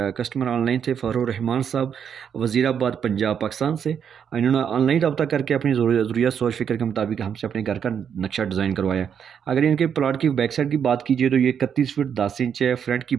कस्टमर ऑनलाइन थे फ़रोह रहमान साहब, वज़ीराबाद पंजाब पाकिस्तान से। इन्होंने ऑनलाइन रब्ता करके अपनी ज़रूरियत सोच फ़िक्र के मुताबिक हमसे अपने घर का नक्शा डिज़ाइन करवाया। अगर इनके प्लाट की बैक साइड की बात कीजिए तो ये 31 फुट 10 इंच है। फ्रंट की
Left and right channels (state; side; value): quieter; left; 7.9 dB